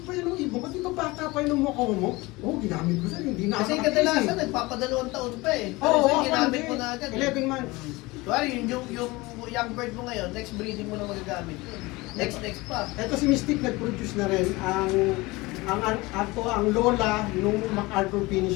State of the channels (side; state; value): right; quieter; 22.2 dB